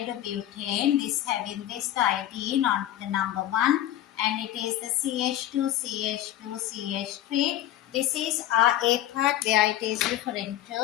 this having this iodine on the number 1, and it is the CH2, CH2, CH3. This is our A part where it is referring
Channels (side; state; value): right; quieter; 12.8 dB